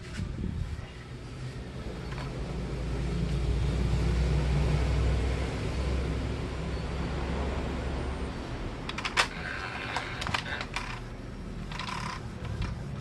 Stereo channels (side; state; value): both; identical; correlation 1.00